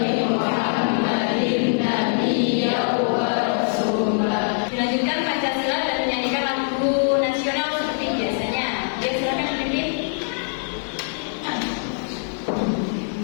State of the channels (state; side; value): silent; right; 64 dB below the other